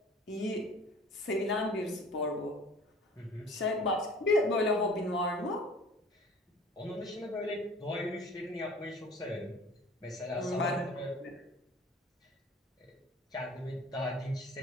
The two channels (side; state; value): both; normal; correlation 0.46